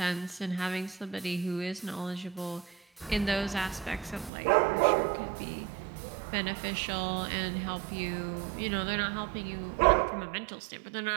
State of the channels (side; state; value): left; drops out; at 4.3 s